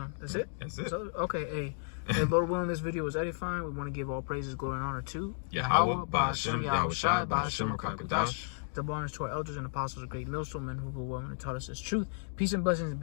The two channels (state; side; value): silent; right; digital silence